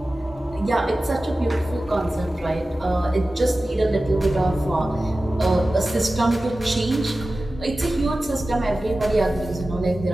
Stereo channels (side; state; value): both; normal; correlation 0.95